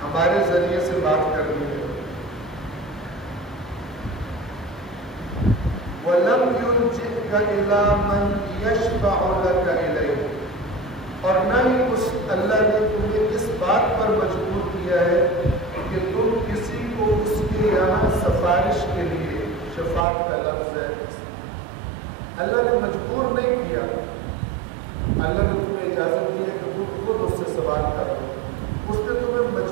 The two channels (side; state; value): left; drops out; at 20.1 s